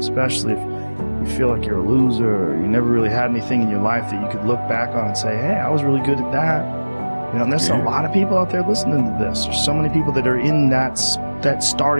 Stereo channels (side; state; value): both; inverted; correlation -1.00